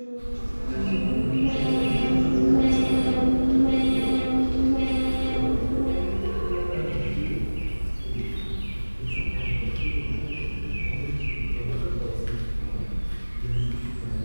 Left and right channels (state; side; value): inverted; both; correlation -1.00